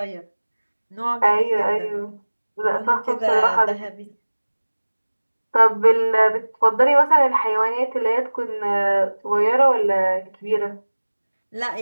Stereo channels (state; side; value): inverted; both; correlation -1.00